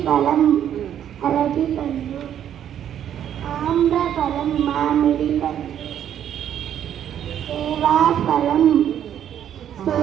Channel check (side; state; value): left; quieter; 10.0 dB